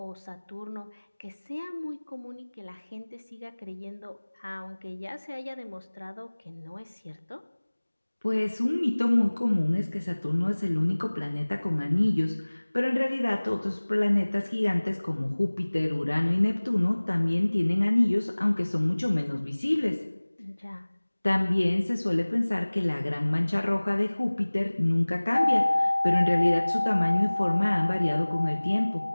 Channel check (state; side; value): inverted; both; correlation -1.00